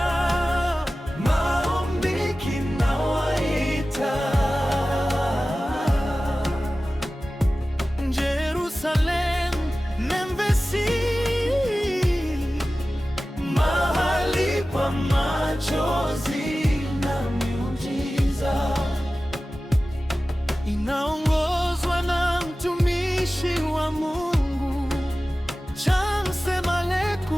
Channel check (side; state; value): both; normal; correlation 0.96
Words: Maombi kinawaita. Jerusalem, Memphisi, mahali pa machozi na miujiza. Inaongozwa na mtumishi wa Mungu Chance